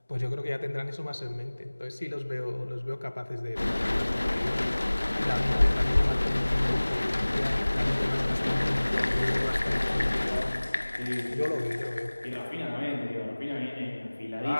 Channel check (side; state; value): both; inverted; correlation -1.00